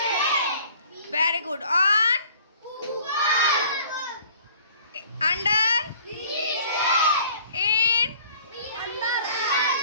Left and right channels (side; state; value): both; inverted; correlation -0.52